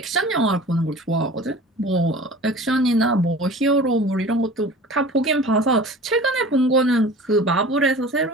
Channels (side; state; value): both; normal; correlation 0.41